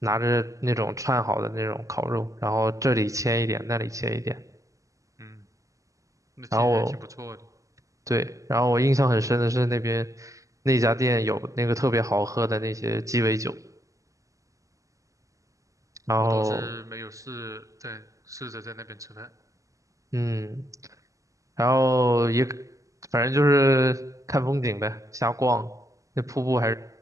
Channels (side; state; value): left; late; 0.16 ms